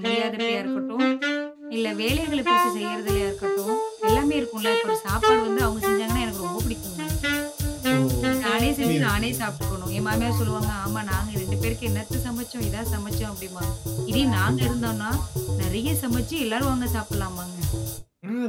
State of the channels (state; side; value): identical; both; correlation 1.00